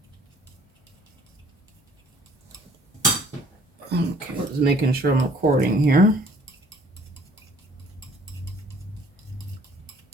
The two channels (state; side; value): normal; both; correlation 0.56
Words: Okay, just making sure I'm recording here.